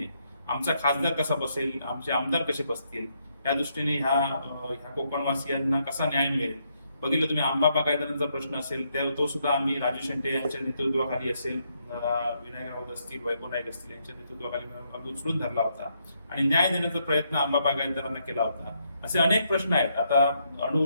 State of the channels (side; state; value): both; inverted; correlation -0.76